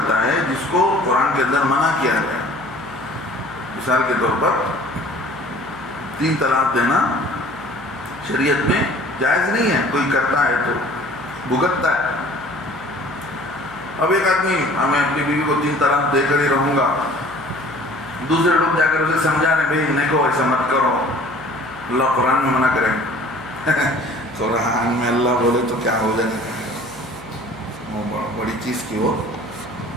ہے جس کو قرآن کے اندر منع کیا گیا. مثال کے طور پر 3 طلاق دینا شریعت میں جائز نہیں ہے. کوئی کرتا ہے تو بھگتتا ہے. اب ایک آدمی میں اپنی بیوی کو 3 طلاق دے کر ہی رہوں گا، دوسرے لوگ جا کر اسے سمجھا رہے بھائی نہیں ایسا مت کرو، اللہ قرآن میں منع کریں. قرآن میں اللہ بولے تو کیا ہو جائے گا، وہ بڑی چیز کی ہو.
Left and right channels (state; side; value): noise; left; hum, 22 dB below the sound